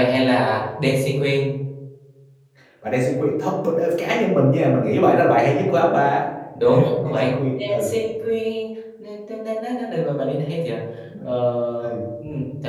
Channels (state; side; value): identical; both; correlation 1.00